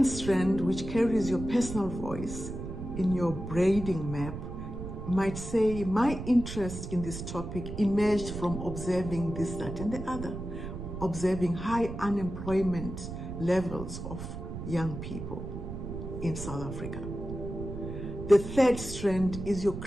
strand, which carries your personal voice in your braiding map, might say, my interest in this topic emerged from observing this, that, and the other, observing high unemployment levels of young people in South Africa. The third strand is your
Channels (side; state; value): right; noise; rumble, 8 dB below the sound